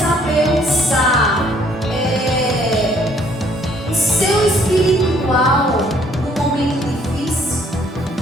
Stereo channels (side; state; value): both; normal; correlation 0.63